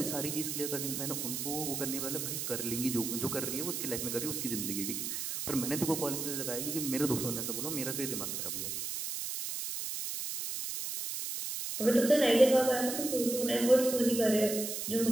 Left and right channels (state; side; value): noise; right; hiss, 4 dB below the sound